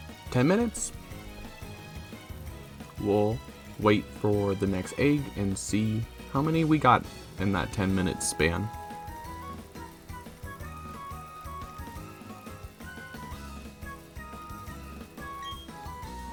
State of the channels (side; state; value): both; identical; correlation 1.00